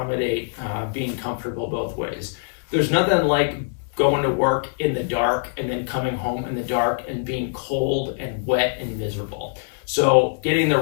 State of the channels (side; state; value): right; silent; 63 dB below the other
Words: being comfortable both ways. There's nothing like going to work in the dark and then coming home in the dark and being cold and wet and miserable. So getting the